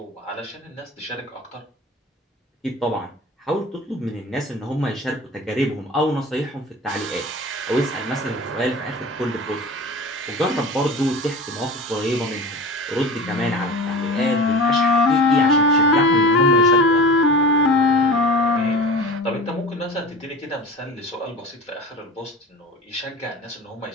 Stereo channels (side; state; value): both; normal; correlation 0.35